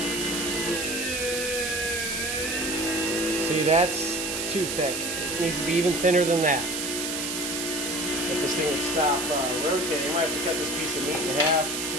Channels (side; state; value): right; noise; hiss, 3 dB below the sound